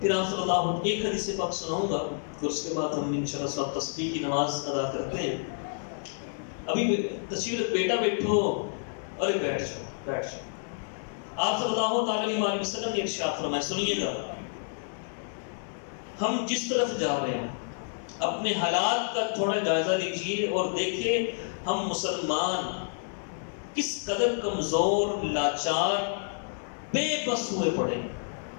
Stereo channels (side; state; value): right; silent; digital silence